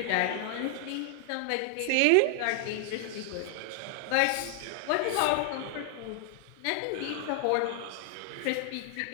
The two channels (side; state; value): both; different; correlation 0.00